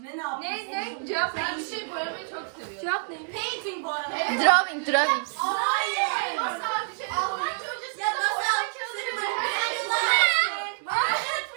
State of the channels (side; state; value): left; silent; 60 dB below the other